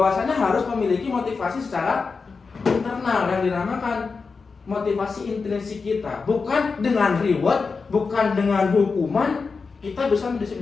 harus memiliki motivasi secara internal yang dinamakan motivasi intrinsik kita. Bukan dengan reward, bukan dengan hukuman kita bisa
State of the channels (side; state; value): right; quieter; 4.7 dB